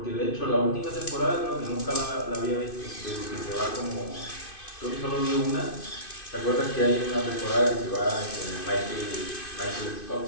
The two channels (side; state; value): right; late; 2.5 ms